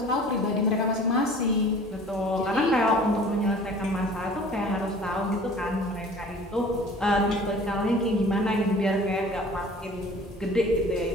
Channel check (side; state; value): both; normal; correlation 0.47